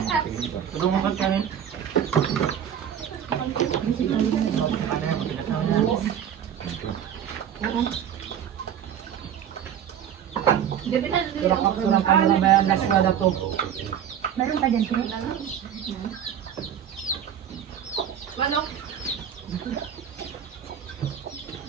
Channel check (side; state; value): left; quieter; 9.3 dB